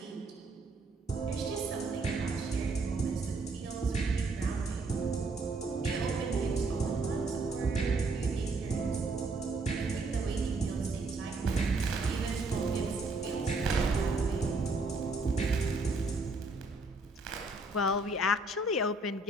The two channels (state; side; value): quieter; left; 3.2 dB